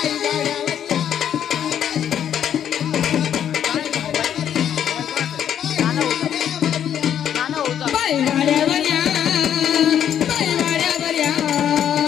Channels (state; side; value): quieter; right; 9.5 dB